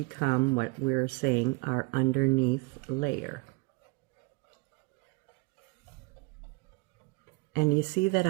what we're saying our underneath layer. And you see that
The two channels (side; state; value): left; quieter; 28.3 dB